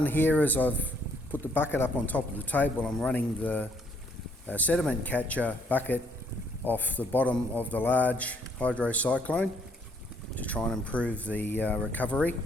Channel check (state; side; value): normal; both; correlation 0.67